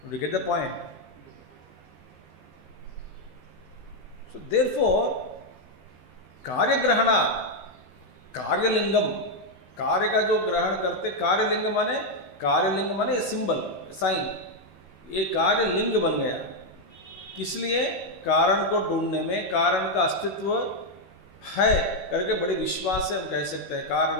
Did you get the point? So therefore, कार्य ग्रहणा, कार्यलिंगम, कार्य का जो ग्रहण करते, कार्यलिंग माने सिंबल, साइन, ये कार्यलिंग बन गया। किस लिए? कारण को ढूंढने में, कारण का अस्तित्व है करके बड़े विश्वास से हम कह सकते हैं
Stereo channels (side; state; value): right; late; 16 ms